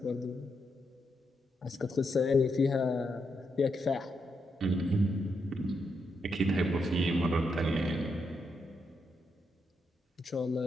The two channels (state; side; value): normal; both; correlation 0.81